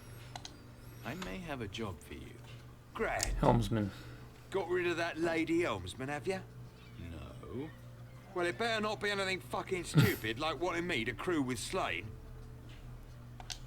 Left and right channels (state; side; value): identical; both; correlation 1.00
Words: I may have a job for you. Grand. Helmsman. Got rid of that lady helmsman, have you? No. Well, it better not be anything fucking stupid like wanting me to crew with Slane.